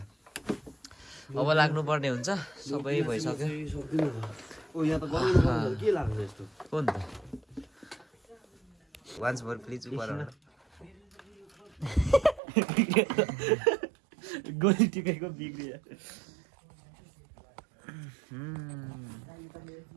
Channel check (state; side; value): drops out; left; at 12.4 s